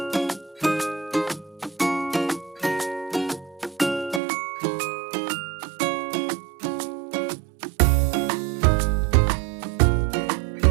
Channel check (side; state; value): left; drops out; at 4.2 s